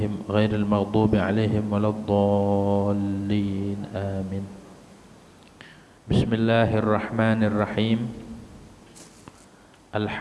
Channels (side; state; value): both; identical; correlation 1.00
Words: غير المغضوب عليهم ولا الضالين آمين. بسم الله الرحمن الرحيم.